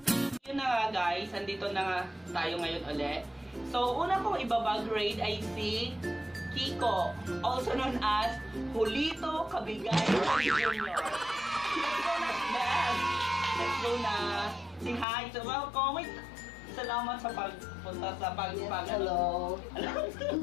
Yun na nga guys, andito na nga tayo ngayon ulit. So, una kong ibabag raid ay si Kiko, also known as Julito Cabigay Jr. Let's go na, Beth! Let's go na! Say hi! So, welcome! Salamat sa pagpunta sa Hello!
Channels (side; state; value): right; drops out; at 15.1 s